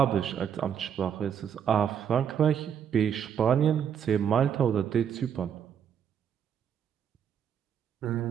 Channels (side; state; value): left; quieter; 8.4 dB